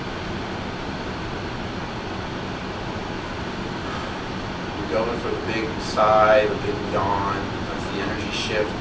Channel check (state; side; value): identical; both; correlation 1.00